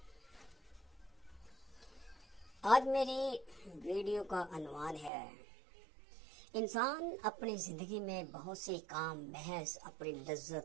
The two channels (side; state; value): left; drops out; at 5.1 s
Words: آج میری ویڈیو کا عنوان ہے انسان اپنی زندگی میں بہت سے کام محض اپنی